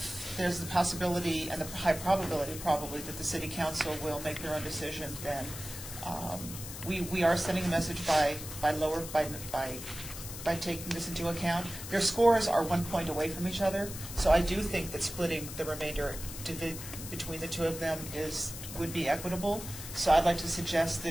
there's the possibility and the high probability probably that the city council will make their own decision, then we are sending a message by taking this into account. Their scores are 1 point away from each other, so I do think that splitting the remainder between the two of them would be equitable. So I'd like to suggest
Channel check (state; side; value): noise; left; hiss, 10 dB below the sound